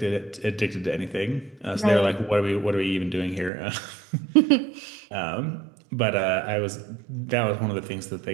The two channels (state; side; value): drops out; left; at 3.5 s